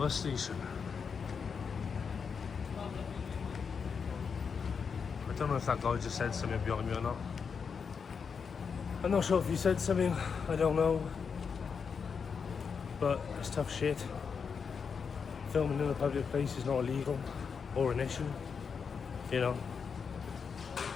station. I don't know if that guy just said something behind me or not. I'm not sure if he said something, I don't know. But it's tough shit. Filming in a public place is not illegal or an issue, you know.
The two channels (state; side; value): quieter; right; 6.0 dB